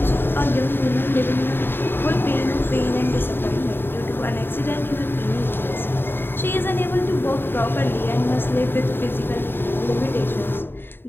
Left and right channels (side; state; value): right; late; 0.10 ms